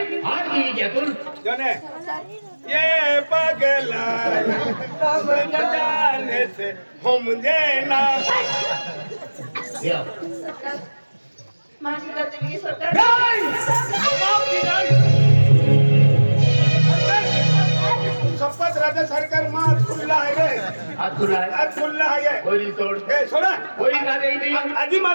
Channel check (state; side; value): inverted; both; correlation -1.00